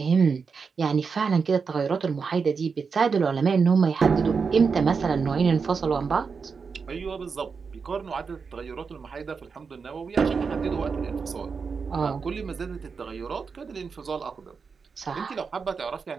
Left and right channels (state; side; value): quieter; left; 5.4 dB